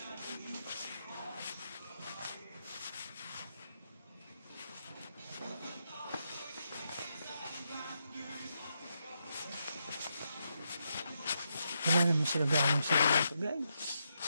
Wala naman sila galing sa mga ito, guys.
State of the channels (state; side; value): inverted; both; correlation -0.83